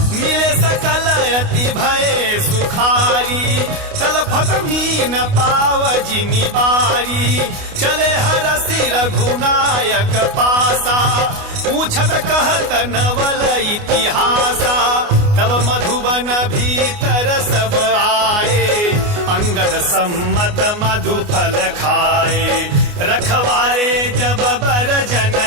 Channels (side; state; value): left; late; 29 ms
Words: मिले सकल अति भय सुखारी तलफत मीन पाव जिनि बारी चले हरसि रघुनायक पासा पूछत कहत नवल इतिहासा तब मधुबन भीतर सब आए अंगद सम्मत मधु फल खाए रखवारे जब बर जन